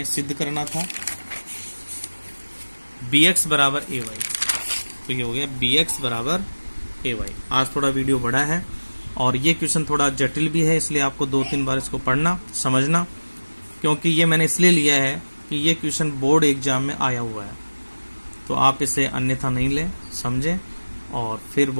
सिद्ध करना था, bx बराबर ay। तो ये हो गया bx बराबर ay। आज थोड़ा वीडियो बड़ा है और ये क्वेश्चन थोड़ा जटिल भी है, इसलिए आपको 2-3 बार इसको पढ़ना समझना, क्योंकि ये मैंने इसलिए लिया है कि ये क्वेश्चन बोर्ड एग्जाम में आया हुआ है। तो आप इसे अन्यथा नहीं लें, समझें, और फिर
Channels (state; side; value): inverted; both; correlation -1.00